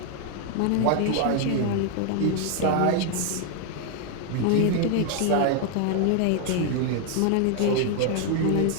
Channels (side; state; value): both; different; correlation 0.00